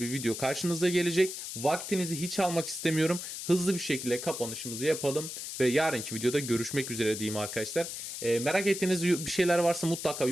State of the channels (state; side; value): noise; left; hiss, 7 dB below the sound